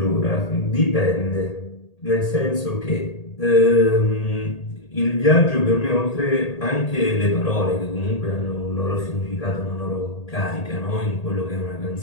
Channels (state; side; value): late; right; 1.8 ms